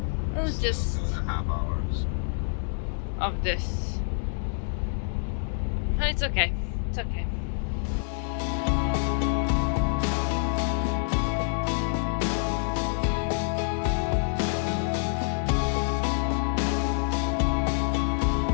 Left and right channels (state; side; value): silent; right; digital silence